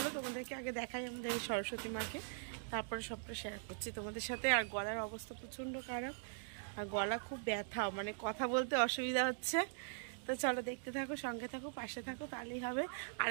তোমাদেরকে আগে দেখাই আমাদের সরস্বতী মাকে, তারপরে সবটা শেয়ার করছি তোমাদের সাথে। আর গলার অবস্থা প্রচণ্ড খারাপ, আর গলা খুব ব্যথা, মানে কথা বলতে অসুবিধা হচ্ছে। তো চলো দেখতে থাকো, সঙ্গে থাকো, পাশে থাকো, তাহলেই হবে।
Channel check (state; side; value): silent; left; digital silence